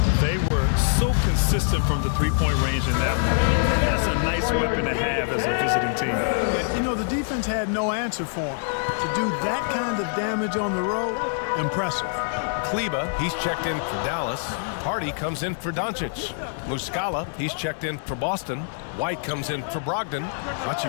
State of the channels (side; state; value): right; silent; 62 dB below the other